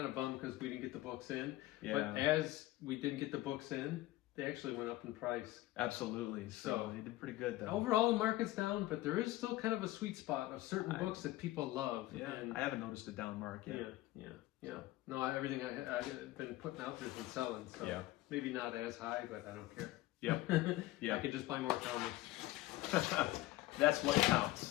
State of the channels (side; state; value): right; quieter; 17.2 dB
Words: of bummed because we didn't get the books in. Yeah. But as we didn't get the books in, they actually went up in price. Absolutely. So So- they did pretty good though. Overall, the market's down, but there is still kind of a sweet spot of certain books that people love. Yeah, And I haven't noticed a down mark yet. yeah. No, everything I've been putting out there's been selling. So Yeah. maybe not as high, but I don't care. Yep. Yeah. I could just buy more comics. That's what